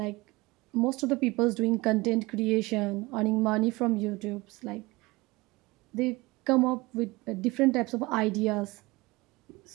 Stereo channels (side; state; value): left; quieter; 22.4 dB